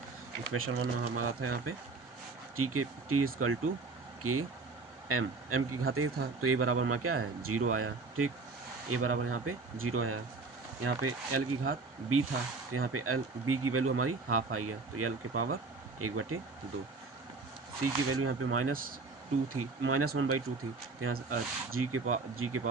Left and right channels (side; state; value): left; quieter; 4.0 dB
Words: इक्वेशन 1 हमारा था यहाँ पे टी इक्वल टू के एम की घात ए था, तो ए बराबर हमारा क्या है 0 आया, ठीक। ए बराबर यहाँ पे 0 आया। यहाँ पे एल की घात बी था, तो यहाँ पे एल बी की वैल्यू हमारी हाफ आई है, तो एल के पावर 1/2। सी की वैल्यू यहाँ पे -2 थी, -1/2 थी, तो यहाँ से जी के